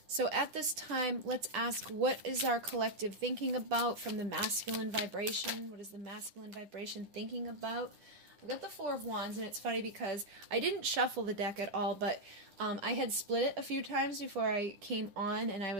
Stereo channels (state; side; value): late; left; 9.9 ms